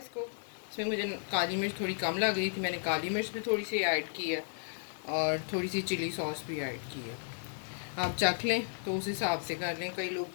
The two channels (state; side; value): silent; right; digital silence